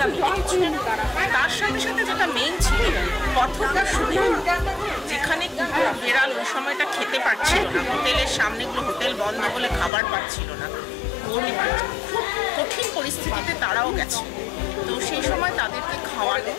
মিলে কিছু। তার সাথে সাথে যেটা মেইন ছিল পথটার সুবিধা, যেখানে বেড়াল ওই সময়টা খেতে পারছিল না, হোটেলের সামনেগুলো হোটেল বন্ধ বলে খাবার পাচ্ছিল না, খুব কঠিন পরিস্থিতিতে তারাও গেছে। তো সেই সময় তাদেরকে খাওয়ানো,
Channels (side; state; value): right; drops out; at 9.9 s